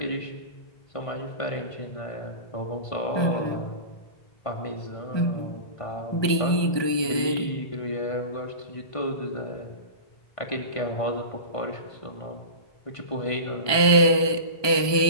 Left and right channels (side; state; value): right; late; 1.2 ms